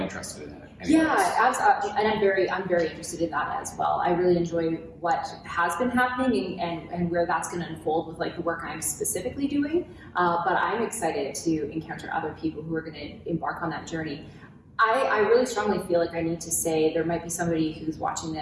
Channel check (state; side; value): identical; both; correlation 1.00